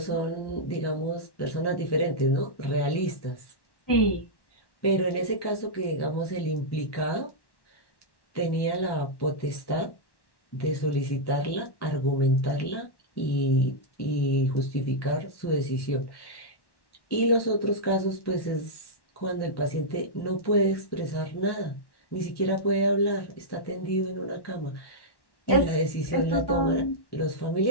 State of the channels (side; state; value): right; late; 1.1 ms